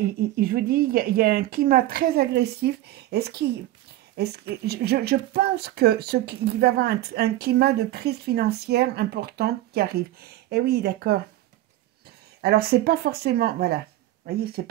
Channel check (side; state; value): left; quieter; 15.1 dB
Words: vous dis, il y a un climat très agressif. Je pense qu'il va y avoir un climat de crise financière importante qui arrive. Eh oui, d'accord. Alors, c'est pas forcément, voilà, vous voyez, c'est